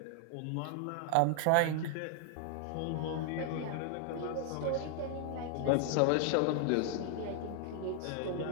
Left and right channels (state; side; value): different; both; correlation 0.00